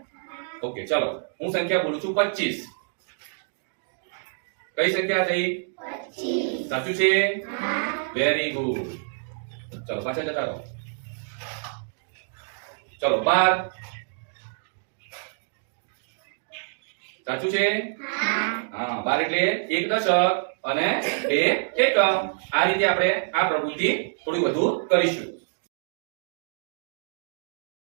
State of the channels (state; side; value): silent; left; digital silence